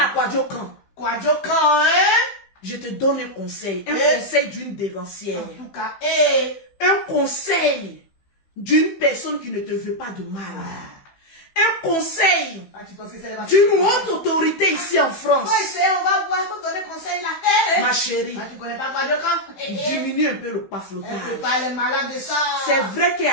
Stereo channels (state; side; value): late; right; 15 ms